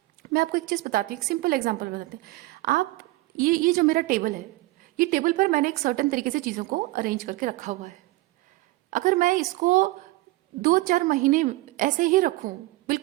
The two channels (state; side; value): quieter; left; 19.9 dB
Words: मैं आपको एक चीज़ बताती हूँ, एक सिंपल एग्जांपल बताते हैं। आप ये जो मेरा टेबल है, ये टेबल पर मैंने एक सर्टेन तरीके से चीज़ों को अरेंज करके रखा हुआ है। अगर मैं इसको 2-4 महीने ऐसे ही रखूँ,